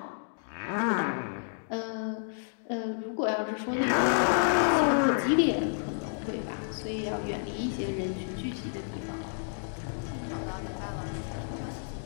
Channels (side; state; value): right; silent; digital silence